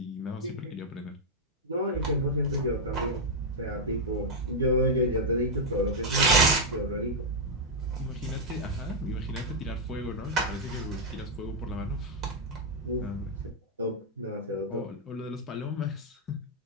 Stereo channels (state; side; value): normal; both; correlation -0.03